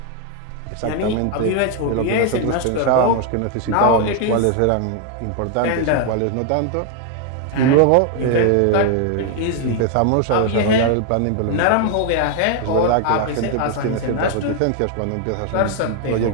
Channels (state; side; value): different; both; correlation 0.01